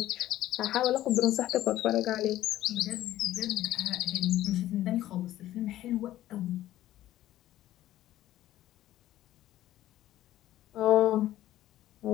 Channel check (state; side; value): quieter; right; 14.0 dB